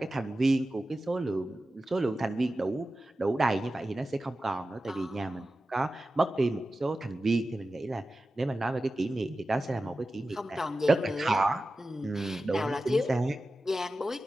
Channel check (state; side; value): normal; both; correlation 0.94